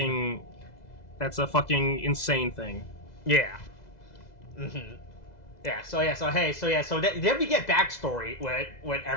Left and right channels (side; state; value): right; late; 2.0 ms